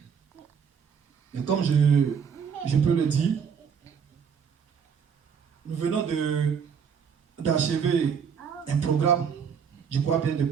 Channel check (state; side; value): quieter; left; 6.9 dB